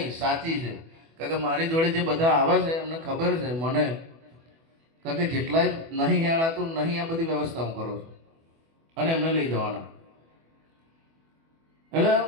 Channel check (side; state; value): left; late; 24 ms